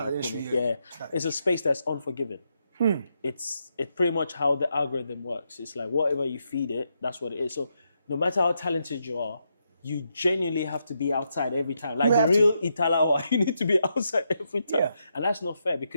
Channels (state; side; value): inverted; both; correlation -0.81